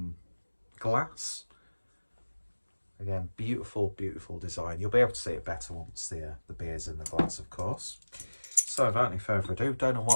glass. Again, beautiful, beautiful design. You'll be able to see it better once the beer's in the glass, of course. So without any further ado, don't know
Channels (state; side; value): inverted; both; correlation -1.00